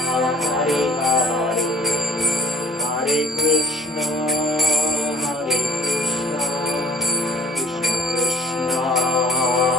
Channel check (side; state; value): both; normal; correlation 0.49